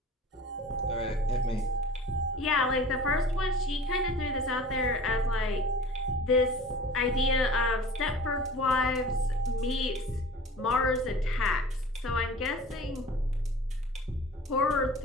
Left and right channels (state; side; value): normal; both; correlation 0.42